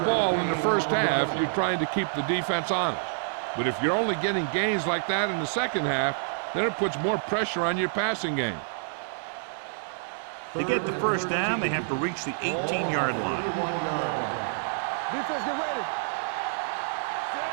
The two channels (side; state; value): left; silent; digital silence